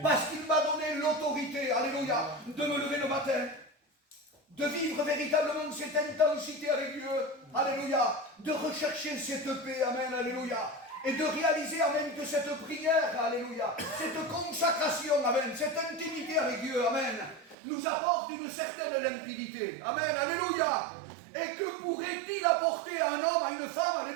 parce qu'il m'a donné l'autorité, alléluia, de me lever le matin, de vivre véritablement cette intensité avec Dieu, alléluia, de rechercher cette paix, amen, alléluia, et de réaliser, amen, que cette prière, alléluia, cette consacration, amen, cette intimité avec Dieu, amen, nous apporte une certaine limpidité, amen, alléluia. Et que pourrait-il apporter à un homme, à une femme,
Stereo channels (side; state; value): left; drops out; at 17.6 s